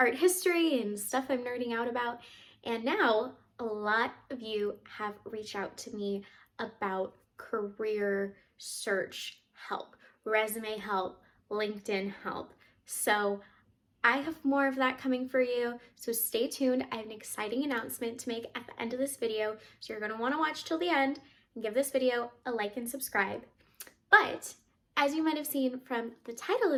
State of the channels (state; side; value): identical; both; correlation 1.00